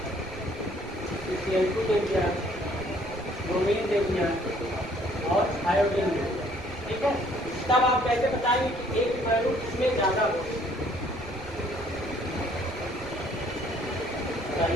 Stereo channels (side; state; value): right; noise; rumble, 17 dB below the sound